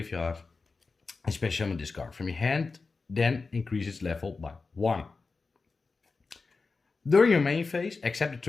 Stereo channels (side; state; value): right; quieter; 4.2 dB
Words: And special summon this card from your hand, then increase its level by 1. During your main phase, except the